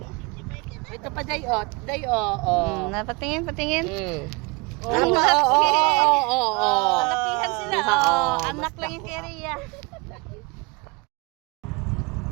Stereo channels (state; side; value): quieter; left; 27.6 dB